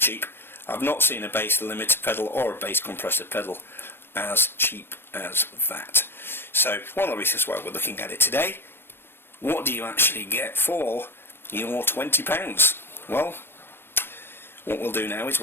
I've not seen a bass limiter pedal or a bass compressor pedal as cheap as that. So one of the reasons why we're looking at it today, what do you actually get for your £20? Well, what we'll do now is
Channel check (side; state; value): right; late; 0.11 ms